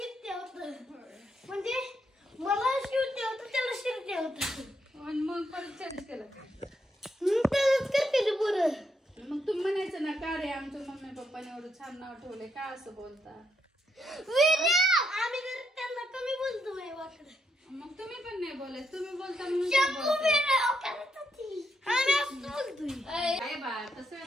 होतं म्हणजे मला शूट होतं त्याला शिकते होतं आणि मग परत चेंज केलं. त्यालाच करते ना पुरं. मग तुम्ही म्हणायचं ना का रे आमच्या मम्मी पप्पाने एवढं छान नाव ठेवलंय का असं बोलता. आम्ही जर त्यांना कमी बोलतो नाही वाटत. मग तुम्ही पण नाही बोलायचं. तुम्ही बोलता म्हणून ते बोलताय. काय बा तसं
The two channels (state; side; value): normal; both; correlation 0.78